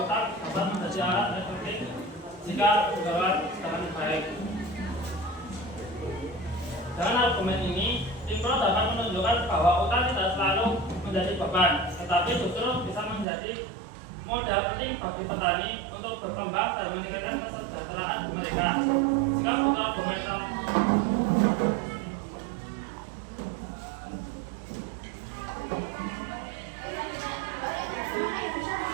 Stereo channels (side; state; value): left; drops out; at 13.2 s